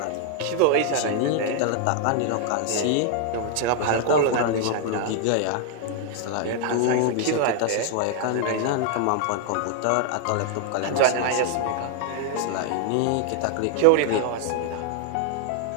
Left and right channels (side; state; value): both; different; correlation 0.00